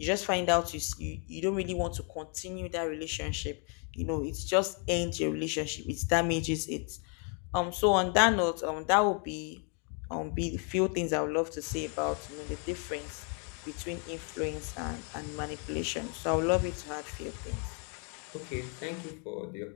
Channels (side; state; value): right; quieter; 39.1 dB